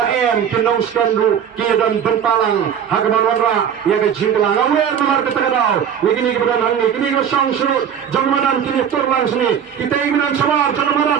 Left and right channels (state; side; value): quieter; left; 8.5 dB